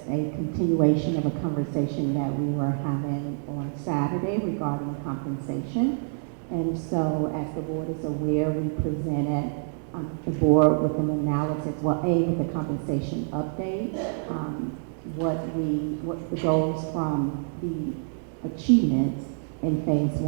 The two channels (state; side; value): silent; left; digital silence